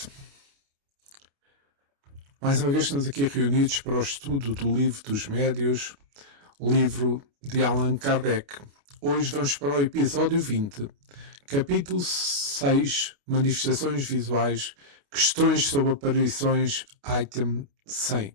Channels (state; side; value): late; left; 29 ms